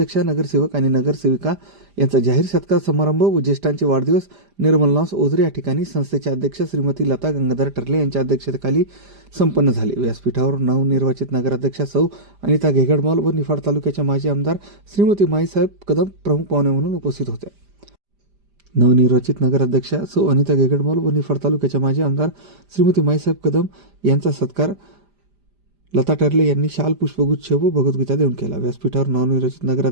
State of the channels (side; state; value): left; late; 5.0 ms